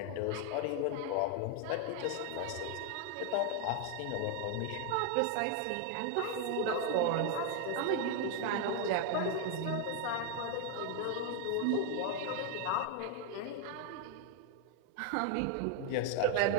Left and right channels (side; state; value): both; different; correlation 0.01